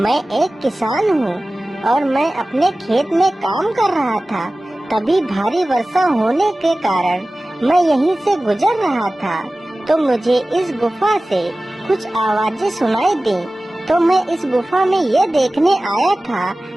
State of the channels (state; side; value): normal; both; correlation 0.97